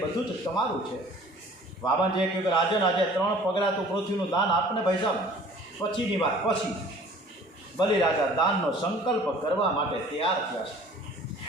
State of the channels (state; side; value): normal; both; correlation 0.49